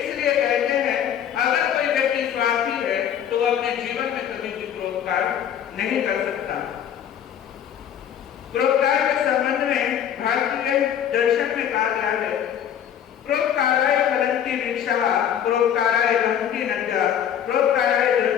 कहते हैं अगर कोई व्यक्ति स्वार्थी है तो वो अपने जीवन में कभी भी परोपकार नहीं कर सकता। परोपकार के संबंध में भारतीय दर्शन में कहा गया है, परोपकाराय फलन्ति वृक्षाः, परोपकाराय वहन्ति नद्यः, परोपकाराय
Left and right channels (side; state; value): right; quieter; 9.5 dB